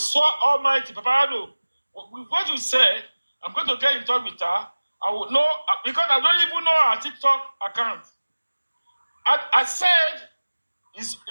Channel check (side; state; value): both; inverted; correlation -1.00